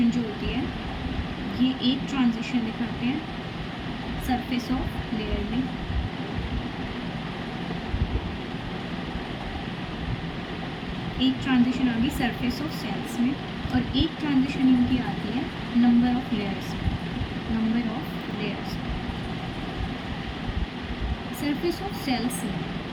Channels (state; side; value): identical; both; correlation 1.00